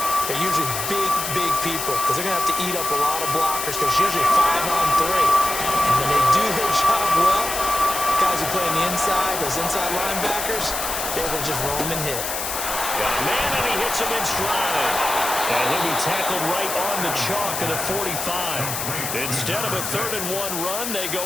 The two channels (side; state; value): left; noise; hiss, 4 dB below the sound